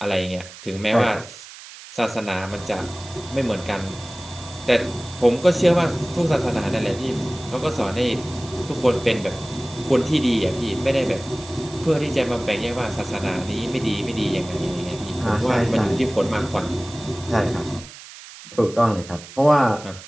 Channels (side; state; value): right; noise; hiss, 16 dB below the sound